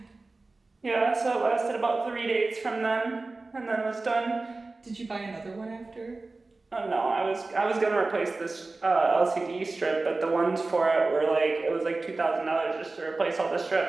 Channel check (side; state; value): left; quieter; 3.4 dB